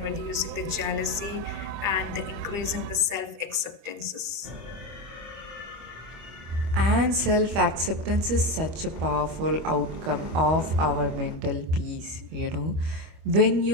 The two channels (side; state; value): left; late; 25 ms